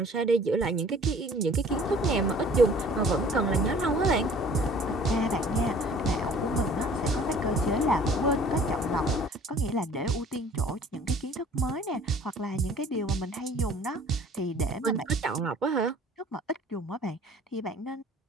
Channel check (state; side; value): normal; both; correlation 0.51